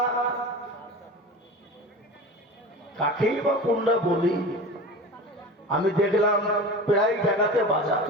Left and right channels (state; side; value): normal; both; correlation 0.33